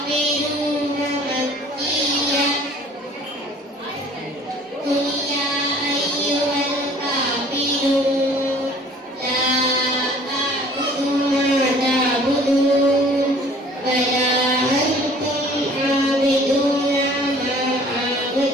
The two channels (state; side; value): normal; both; correlation 0.52